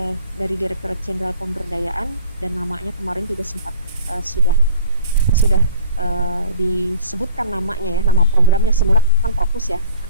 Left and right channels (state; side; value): inverted; both; correlation -0.47